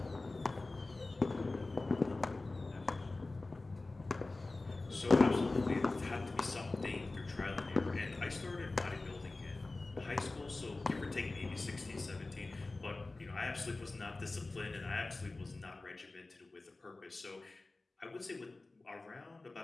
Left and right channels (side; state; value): right; quieter; 3.2 dB